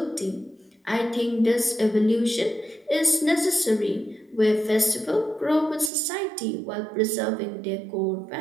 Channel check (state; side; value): drops out; left; at 5.9 s